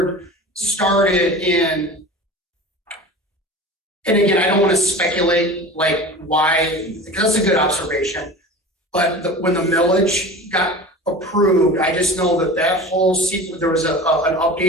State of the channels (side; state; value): both; normal; correlation 0.35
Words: started in, and again, I don't want to speculate like why, because that's a good observation. But when the millage got approved, I just know that whole sequence, there was an